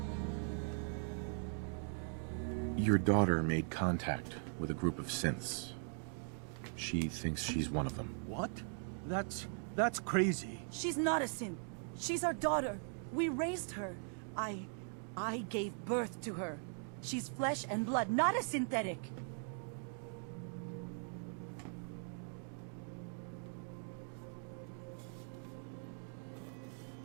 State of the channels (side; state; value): left; silent; 51 dB below the other